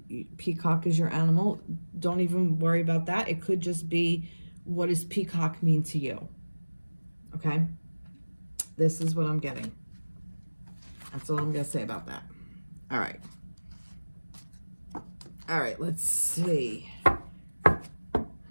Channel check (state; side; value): inverted; both; correlation -1.00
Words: peacock is your animal, don't even worry about that. It could just be, what does peacock mean to you? Okay. This is what I'm getting. That's all I'm going to say about that. All right. All right, let's see.